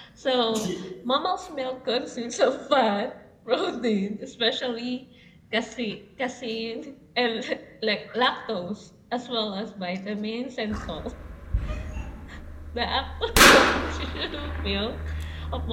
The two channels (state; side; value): identical; both; correlation 1.00